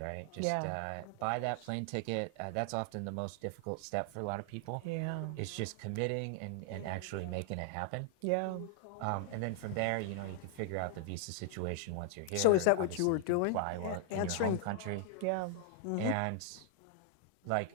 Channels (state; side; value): different; both; correlation 0.00